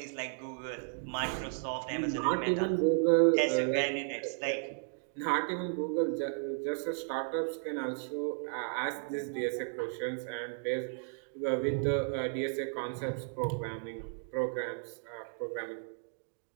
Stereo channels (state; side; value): silent; left; digital silence